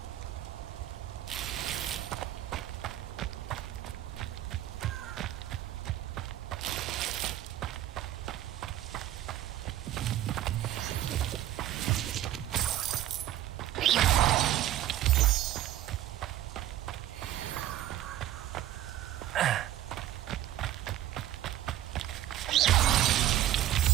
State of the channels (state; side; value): quieter; left; 12.9 dB